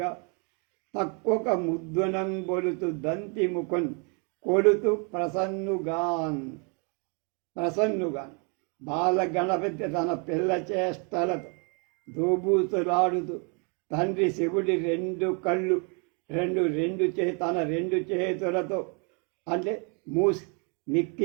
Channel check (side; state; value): left; quieter; 35.3 dB